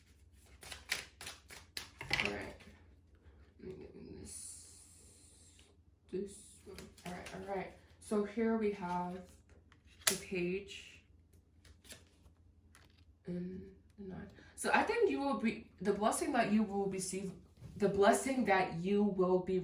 right. Let me get this one. All right. So here we have the Page and the 9. So I think you will be the blessing that you will receive. The blessing that you will be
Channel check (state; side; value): identical; both; correlation 1.00